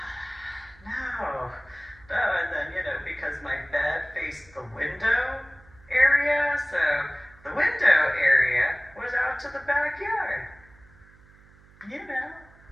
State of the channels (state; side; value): noise; right; hum, 26 dB below the sound